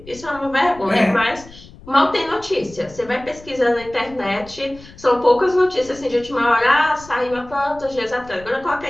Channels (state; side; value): noise; left; rumble, 20 dB below the sound